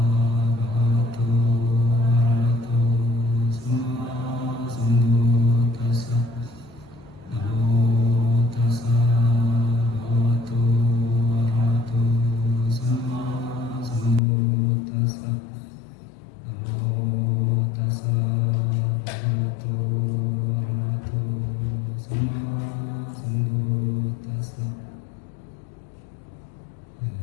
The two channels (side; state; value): right; drops out; at 14.2 s